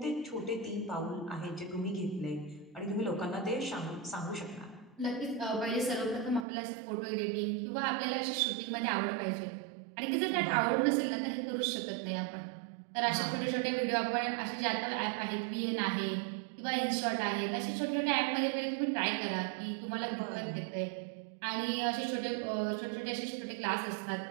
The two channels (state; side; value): drops out; left; at 6.5 s